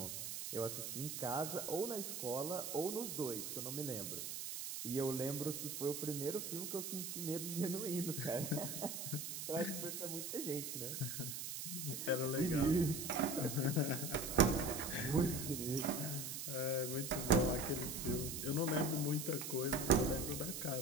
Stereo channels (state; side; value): noise; right; hiss, 5 dB below the sound